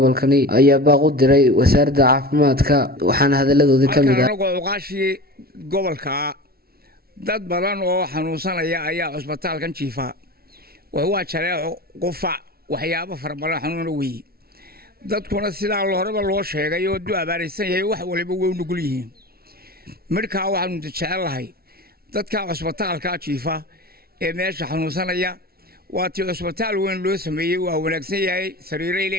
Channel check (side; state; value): left; late; 0.44 ms